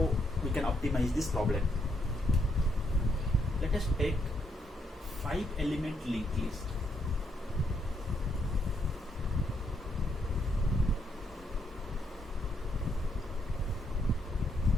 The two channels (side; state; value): both; normal; correlation 0.75